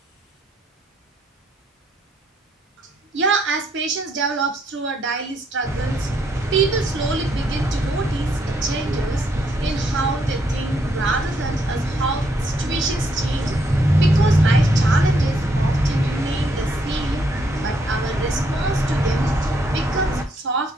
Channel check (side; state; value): both; normal; correlation 0.73